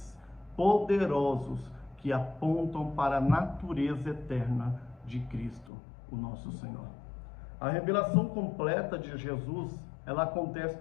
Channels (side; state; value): right; drops out; at 5.7 s